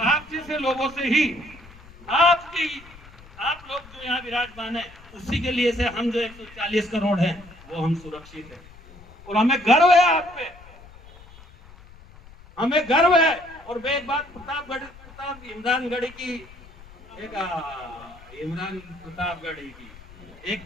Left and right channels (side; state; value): left; noise; rumble, 21 dB below the sound